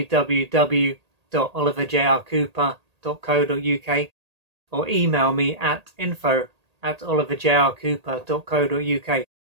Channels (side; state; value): left; late; 1.8 ms